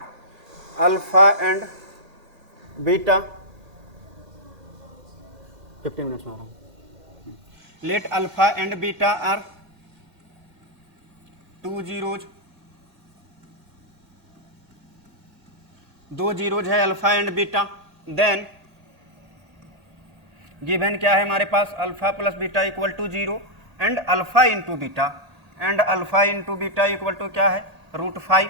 alpha and beta 15 minutes में हो रहा हूँ। Let alpha and beta are 2 zeros, 2 zeros है alpha and beta. Then given क्या है हमारे पास, alpha plus beta equal to 0 and alpha into beta and alpha into beta equal to क्या है, √5।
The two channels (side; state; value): left; late; 1.8 ms